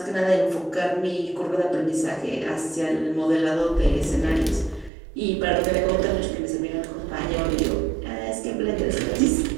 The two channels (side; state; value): left; drops out; at 4.9 s